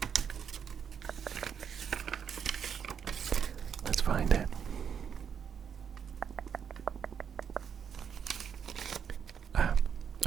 Let's find it.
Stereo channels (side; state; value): left; quieter; 7.5 dB